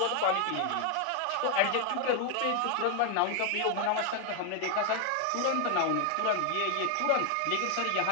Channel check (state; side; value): different; both; correlation 0.01